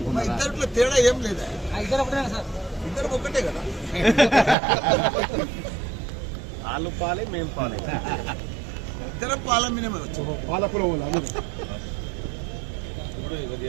ఇద్దరిలో తేడా ఏం లేదా, ఇద్దరు ఒకటే కదా. వాళ్ళు పాలే మేము పాలే, ఇద్దరు పాల మినిమే వచ్చు. పాలకుల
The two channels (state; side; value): drops out; left; at 4.5 s